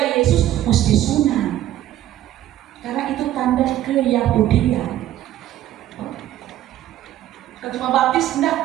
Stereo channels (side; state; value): left; quieter; 12.9 dB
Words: Yesus mesti sunat, karena itu tanda keyahudian. Kalau cuma baptis